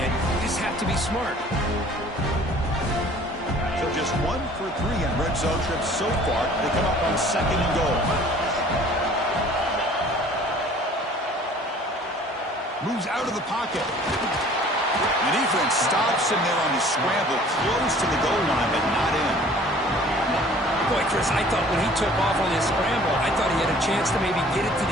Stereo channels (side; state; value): both; normal; correlation 0.51